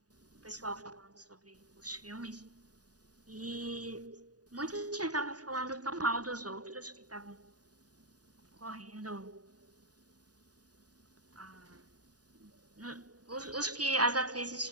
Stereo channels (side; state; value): left; late; 0.68 ms